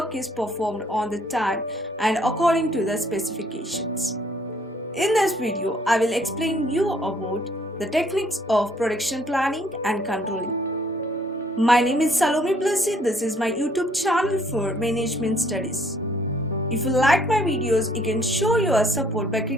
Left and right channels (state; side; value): normal; both; correlation 0.63